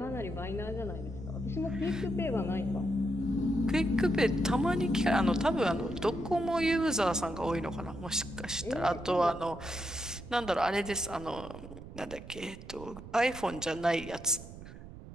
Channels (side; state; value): right; noise; rumble, 14 dB below the sound